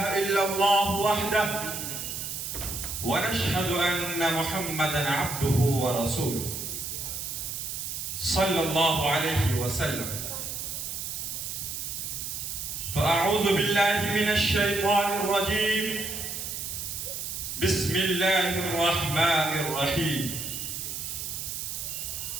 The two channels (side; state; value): right; noise; hiss, 5 dB below the sound